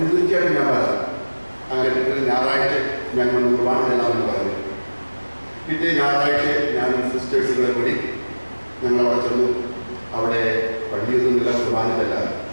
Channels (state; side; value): inverted; both; correlation -1.00